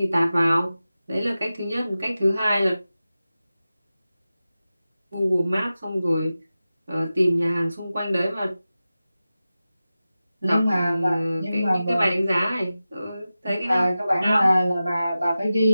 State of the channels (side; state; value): both; inverted; correlation -0.94